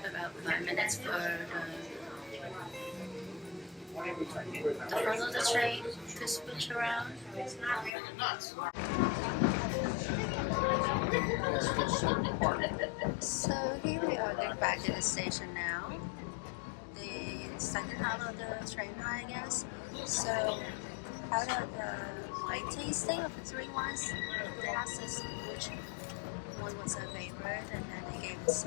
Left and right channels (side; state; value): right; drops out; at 7.9 s